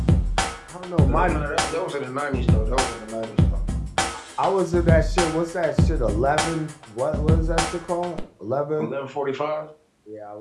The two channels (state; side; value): identical; both; correlation 1.00